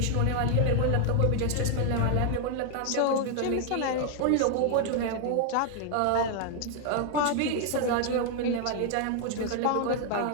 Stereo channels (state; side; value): different; both; correlation 0.00